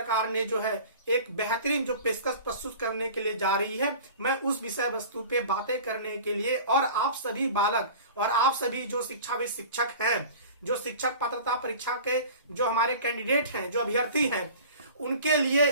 ने जो है एक बेहतरीन जो पेशकश प्रस्तुत करने के लिए जा रही है, मैं उस विषय वस्तु पे बातें करने के लिए और आप सभी बालक और आप सभी जो शिक्षाविद शिक्षक हैं, जो शिक्षक पात्रता परीक्षा के जो हमारे कैंडिडेट हैं, जो अभ्यर्थी हैं, उनके लिए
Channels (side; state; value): both; inverted; correlation -0.41